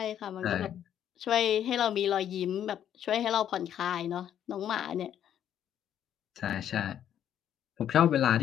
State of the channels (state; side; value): quieter; right; 10.1 dB